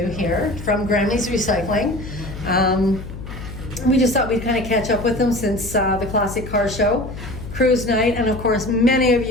here from Grammie's Recycling. We just thought we'd kind of catch up with them since the Classic Car Show, Cruise Night, and of course many of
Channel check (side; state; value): left; noise; hum, 11 dB below the sound